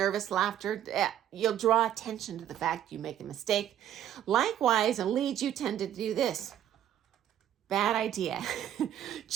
laughter. You'll draw attention to the fact you make a mistake. Likewise, in leads, you tend to do this. Bad idea.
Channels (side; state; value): left; quieter; 10.9 dB